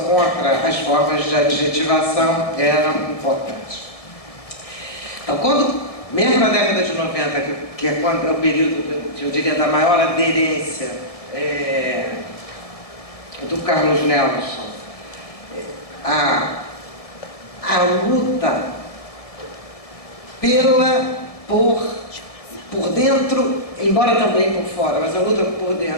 as formas de adjetivação era importante. Então, mesmo na década de 90, que é o período, eu diria, da maior aderência do Carlos Nelson, a luta por dentro, embora também por fora, mas a luta por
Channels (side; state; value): right; late; 1.7 ms